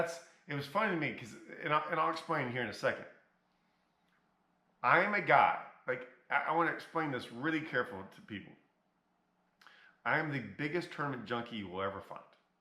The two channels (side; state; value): both; identical; correlation 1.00